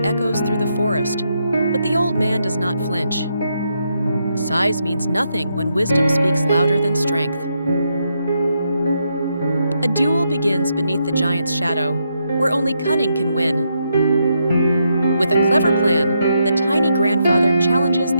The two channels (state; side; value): inverted; both; correlation -0.80